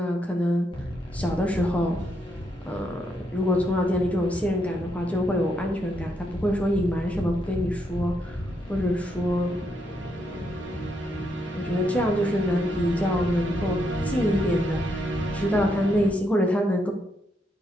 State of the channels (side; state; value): both; normal; correlation 0.78